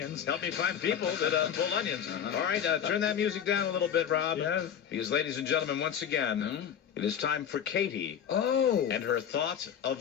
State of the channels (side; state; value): right; quieter; 8.7 dB